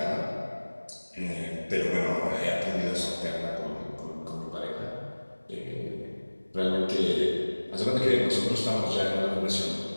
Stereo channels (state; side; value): inverted; both; correlation -1.00